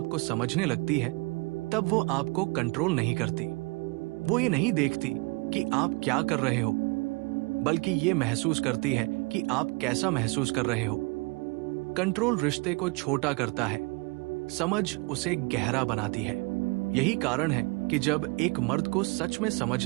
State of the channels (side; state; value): left; quieter; 28.3 dB